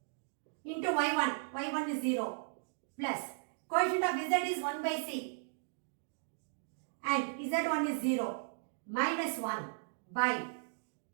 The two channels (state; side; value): silent; left; digital silence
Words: Into y1. y1 is 0. Plus coefficient of z is 1 by c. And z1 is 0. Minus 1 by